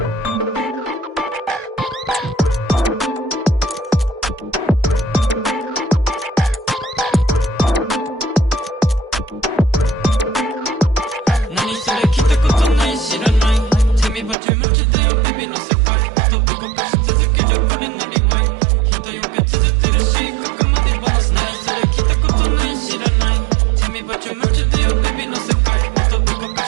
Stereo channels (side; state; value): left; drops out; at 14.4 s